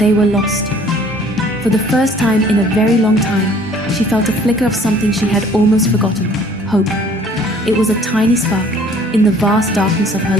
were lost. For the first time in a very long time, she felt a flicker of something she had almost forgotten, hope. It was a tiny spark in the vast darkness of her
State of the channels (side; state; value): both; normal; correlation 0.55